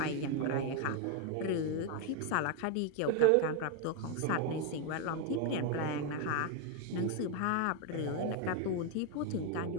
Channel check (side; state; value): both; different; correlation 0.01